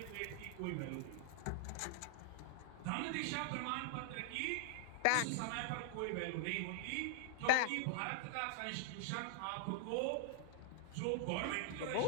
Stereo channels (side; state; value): both; different; correlation 0.00